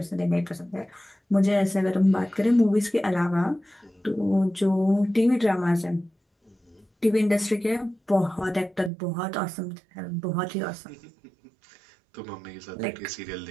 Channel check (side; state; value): left; drops out; at 8.9 s